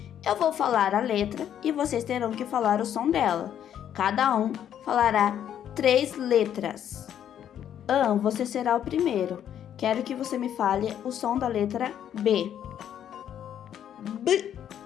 Eu vou falar a letra e vocês terão que falar o som dela. Cada um falará 3 letras. Você será o primeiro. Quero que você me fale o som da letra B.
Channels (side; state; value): right; quieter; 9.9 dB